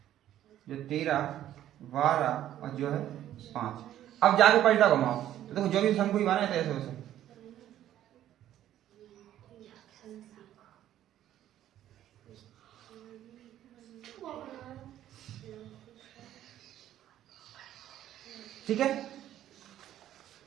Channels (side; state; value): left; quieter; 12.1 dB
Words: जो 13 12 और जो है 5। अब जाके परिता घुमाओ, तो देखो जो भी शंकु ही बने थे ऐसे वैसे, ठीक है।